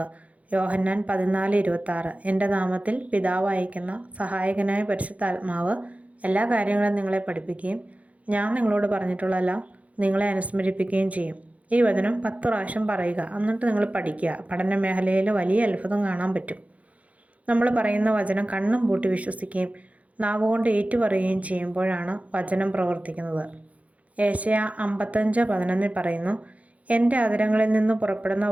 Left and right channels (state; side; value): late; left; 0.067 ms